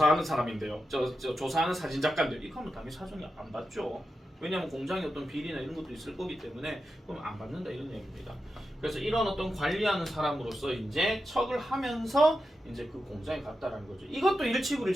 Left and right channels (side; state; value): both; normal; correlation 0.89